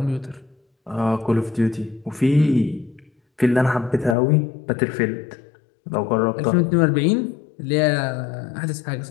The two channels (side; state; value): right; drops out; at 4.2 s